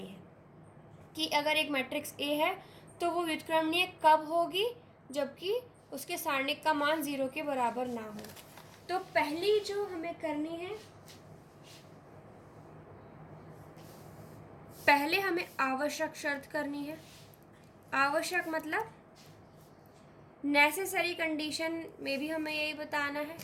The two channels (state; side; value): identical; both; correlation 1.00